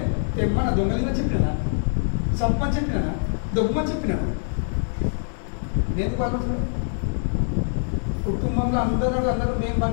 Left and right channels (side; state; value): right; silent; digital silence